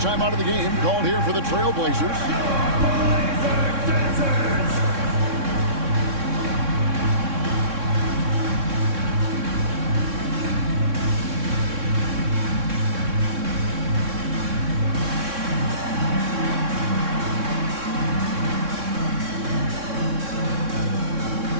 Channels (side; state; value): left; late; 3.6 ms